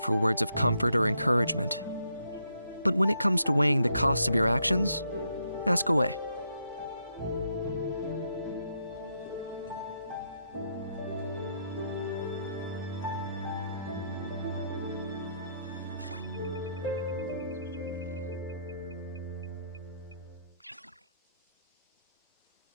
words of comfort or encouragement. But when it comes to weighing the costs of your actions, ask away.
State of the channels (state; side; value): inverted; both; correlation -0.76